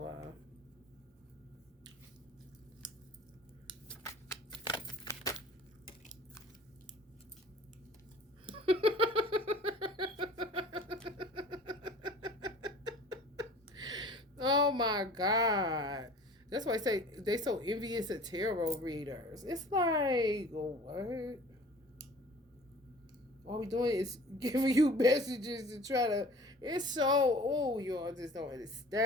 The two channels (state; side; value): normal; both; correlation 0.46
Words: Oh my God. That's why I say they so envious of tarot readers. It's like, what? All we doing is giving you messages to try to. It's so. Y'all just don't